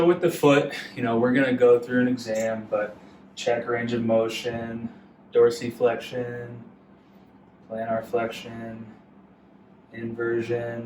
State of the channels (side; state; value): both; identical; correlation 1.00